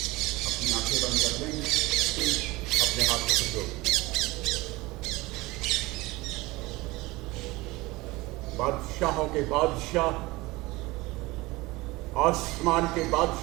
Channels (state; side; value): quieter; left; 21.4 dB